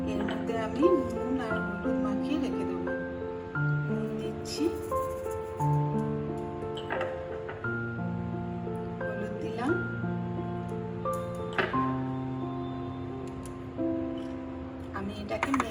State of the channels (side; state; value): both; identical; correlation 1.00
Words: এর মধ্যে আমি নুন আর হলুদ মাখিয়ে রেখে দেবো। নুন দিচ্ছি, হলুদ দিলাম, আমি এটাকে